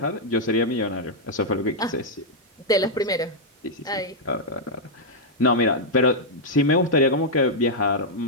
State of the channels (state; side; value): normal; both; correlation -0.04